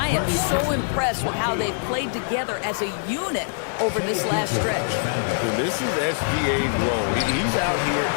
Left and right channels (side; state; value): right; silent; 63 dB below the other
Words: am so impressed with how they've played together as a unit over this last stretch. So this is SGA's role. He's out here